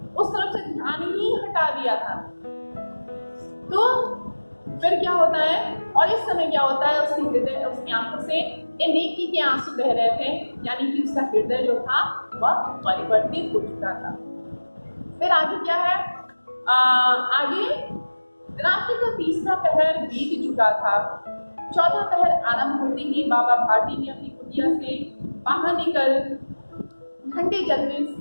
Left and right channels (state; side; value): inverted; both; correlation -1.00